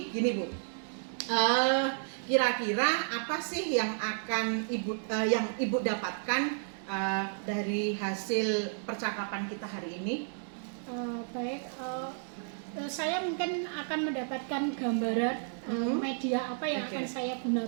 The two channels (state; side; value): silent; left; digital silence